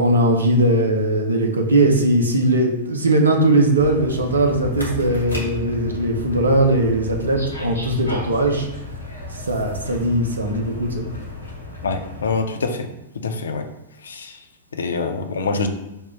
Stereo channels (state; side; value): inverted; both; correlation -0.39